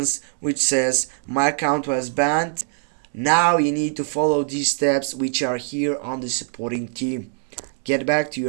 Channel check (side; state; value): left; silent; digital silence